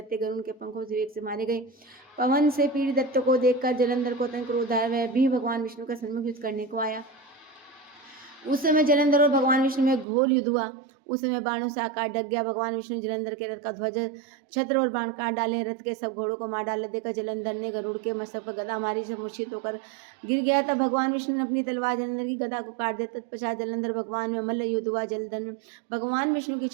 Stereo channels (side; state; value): left; drops out; at 10.1 s